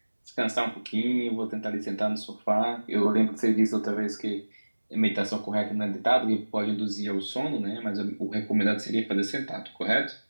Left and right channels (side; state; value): both; inverted; correlation -1.00